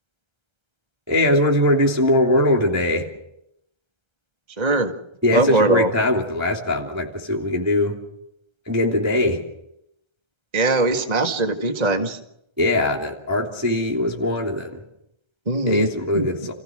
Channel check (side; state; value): left; late; 1.3 ms